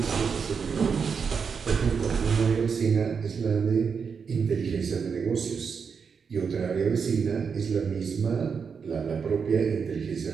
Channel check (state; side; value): quieter; left; 6.0 dB